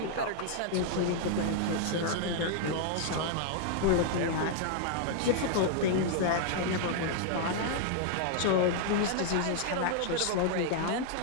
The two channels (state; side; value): different; both; correlation 0.00